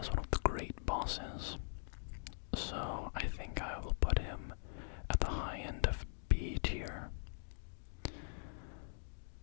one of the great bosses. So I think I will put him at the high end of B tier,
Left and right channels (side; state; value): right; silent; digital silence